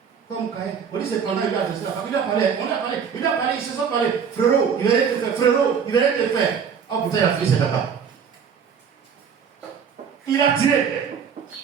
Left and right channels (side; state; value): left; quieter; 7.0 dB